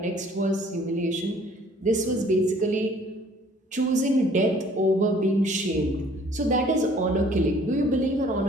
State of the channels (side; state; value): both; normal; correlation 0.56